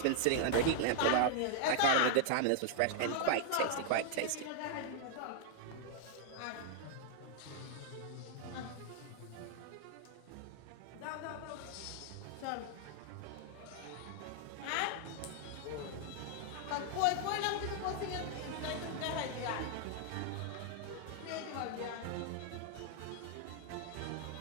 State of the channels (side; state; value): both; different; correlation -0.01